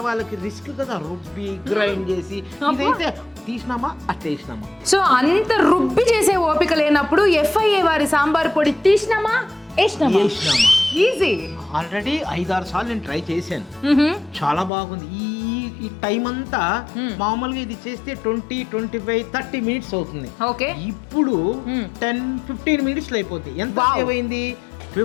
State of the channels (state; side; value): drops out; right; at 14.7 s